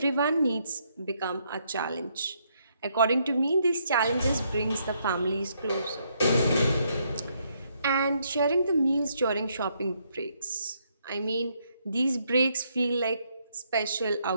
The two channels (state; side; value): inverted; both; correlation -0.74